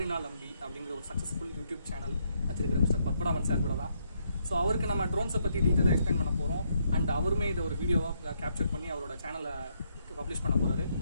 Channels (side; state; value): both; inverted; correlation -0.75